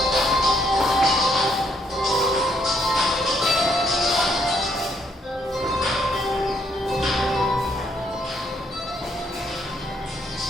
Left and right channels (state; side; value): normal; both; correlation 0.71